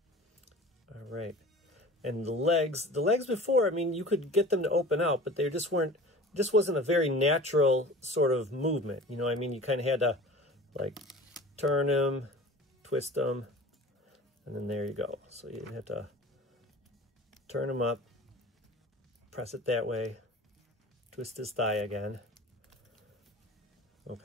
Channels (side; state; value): both; normal; correlation 0.40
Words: All right. And the legs before, I mean, you could get them to open out, but they just wasn't a very natural sort of movement. You know what I mean? You kind of had to, like, turn him, twist him, and then there you go. So you have to turn him up, press it that way, twist his thigh again.